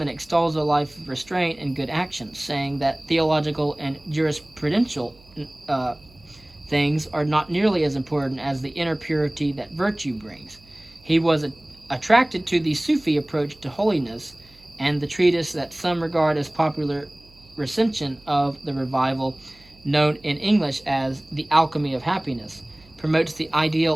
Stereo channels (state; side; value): noise; right; hum, 27 dB below the sound